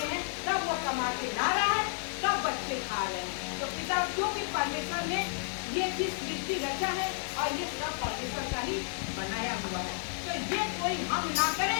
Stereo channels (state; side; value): silent; right; digital silence